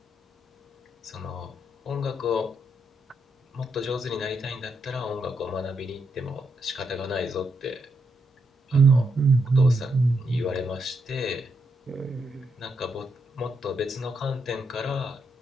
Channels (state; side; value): normal; both; correlation 0.80